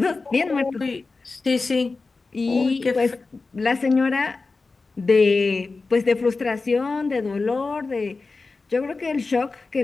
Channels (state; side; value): quieter; right; 3.9 dB